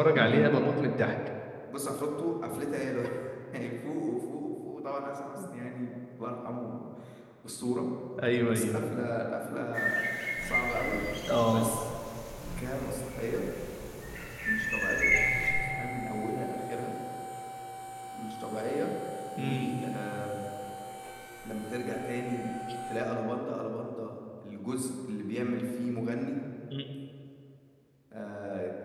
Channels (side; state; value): both; identical; correlation 1.00